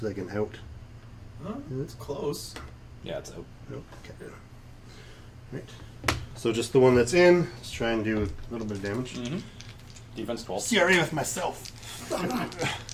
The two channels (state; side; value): identical; both; correlation 1.00